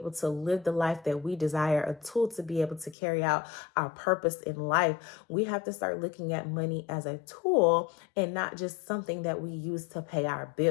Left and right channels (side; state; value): right; drops out; at 3.0 s